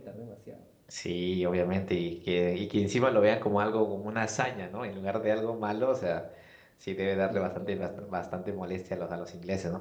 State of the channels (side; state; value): both; identical; correlation 1.00